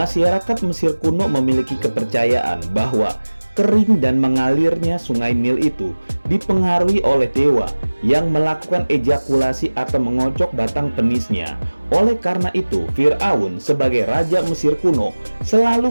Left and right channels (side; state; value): both; inverted; correlation -1.00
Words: Mesir kuno memiliki kepercayaan bahwa kering dan mengalirnya sungai Nil itu dipengaruhi oleh dewa yang melakukan ejakulasi atau mengocok batang penisnya. Oleh karena itu, Fir'aun sebagai raja Mesir kuno